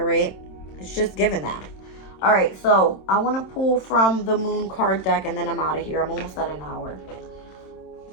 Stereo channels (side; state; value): right; late; 27 ms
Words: right? It's just giving that. All right, so I want to pull from the moon card deck and then I'm out of here. I'm almost at an hour.